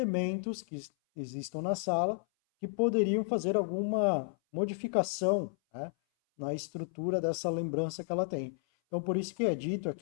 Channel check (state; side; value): silent; right; 56 dB below the other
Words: que existam na sala que poderiam fazer alguma modificação, né, na estrutura dessa lembrança que ela tem. Então, por isso que é dito